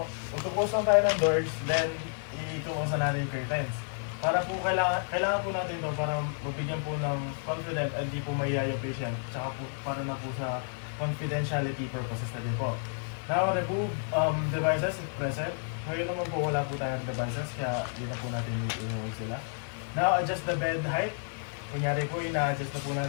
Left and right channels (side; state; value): right; silent; 57 dB below the other